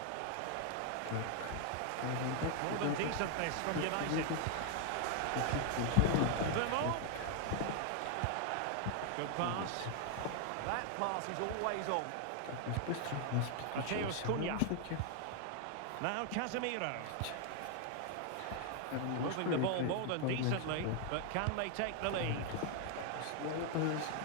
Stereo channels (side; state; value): both; different; correlation 0.00